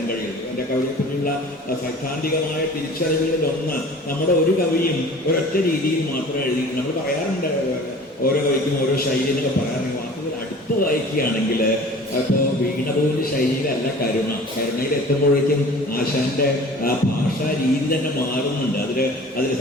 കഴിയുള്ളൂ. എൻ്റെ കവിതയെപ്പറ്റിയുള്ള സൈദ്ധാന്തികമായ തിരിച്ചറിവുകളിൽ ഒന്ന്, നമ്മുടെ ഒരു കവിയും ഒരൊറ്റ രീതിയിൽ മാത്രം എഴുതി. നമ്മൾ പറയാറുണ്ട് ഓരോ കവിക്കും ഓരോ ശൈലി എന്നൊക്കെ പറയാറുണ്ട്. വാക്കുകൾ അടുത്ത് വായിക്കുകയാണെങ്കിൽ ഇപ്പോൾ വീണപോലിന്റെ ശൈലിയിലല്ല കരുണയിൽ എത്തുമ്പോഴേക്കും ആശാന്റെ ആ ഭാഷാ രീതി തന്നെ മാറുന്നുണ്ട്. അതിൽ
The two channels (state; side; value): normal; both; correlation 0.44